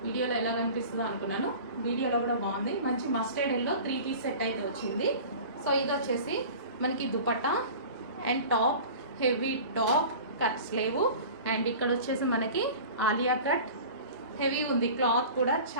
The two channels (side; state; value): both; inverted; correlation -0.39